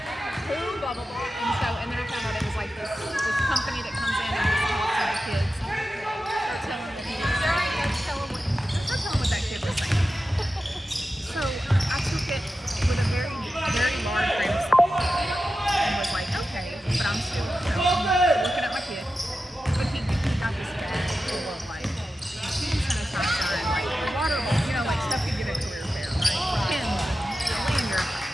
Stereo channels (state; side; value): normal; both; correlation 0.92